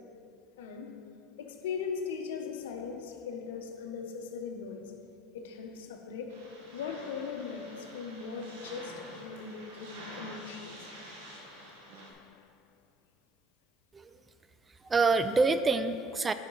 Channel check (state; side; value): normal; both; correlation 0.57